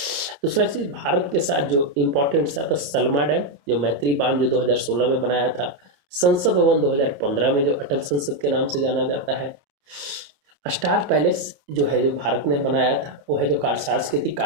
दूसरा चीज़ भारत के साथ जो इम्पोर्टेंट सा था सलमा डैम, जो मैत्री बांध जो 2016 में बनाया था। संसद भवन 2015 में जो अटल संसद के नाम से जाना जाता है। स्टार पैलेस जो है जो भारत ने बनाया था, वो है जो सांस्कृतिक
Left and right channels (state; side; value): late; left; 28 ms